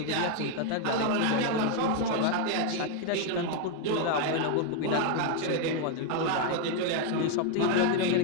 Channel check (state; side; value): different; both; correlation 0.01